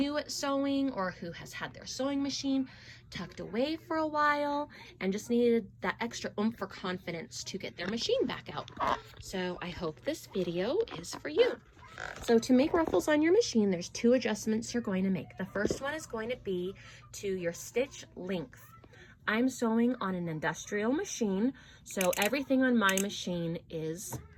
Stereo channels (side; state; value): both; identical; correlation 1.00